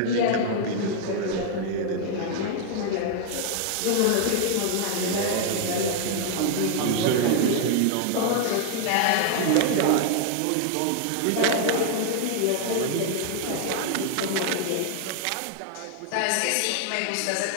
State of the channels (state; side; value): different; both; correlation 0.00